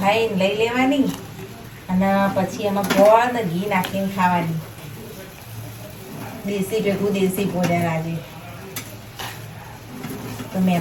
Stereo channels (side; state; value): both; identical; correlation 1.00